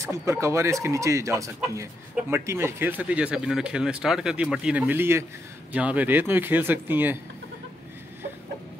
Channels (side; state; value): both; normal; correlation 0.81